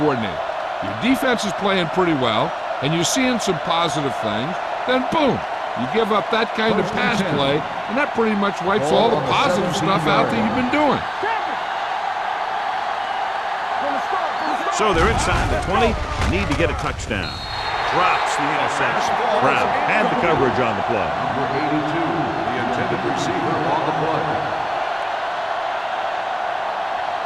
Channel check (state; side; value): identical; both; correlation 1.00